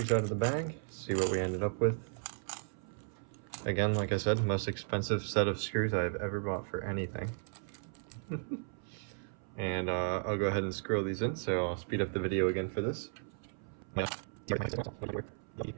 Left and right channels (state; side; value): silent; left; 54 dB below the other